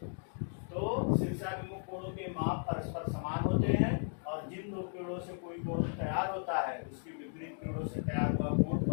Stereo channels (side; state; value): right; silent; 54 dB below the other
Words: तो शीर्षाभिमुख कोणों के माप परस्पर समान होते हैं, और जिन दो किरणों से कोई कोण तैयार होता है, उसकी विपरीत किरणों से तैयार हुआ कोण